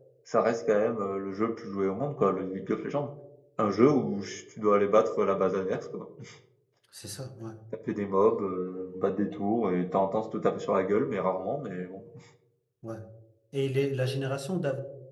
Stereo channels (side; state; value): both; identical; correlation 1.00